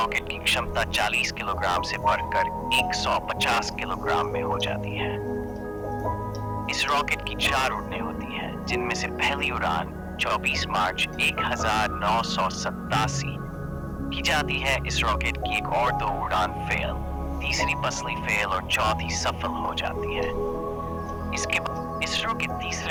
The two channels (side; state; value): both; identical; correlation 1.00